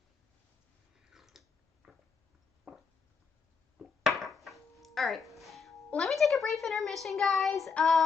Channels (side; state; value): right; quieter; 5.4 dB